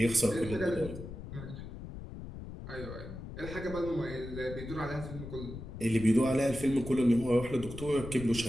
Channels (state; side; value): noise; left; rumble, 10 dB below the sound